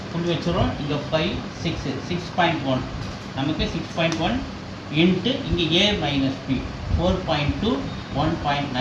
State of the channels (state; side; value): identical; both; correlation 1.00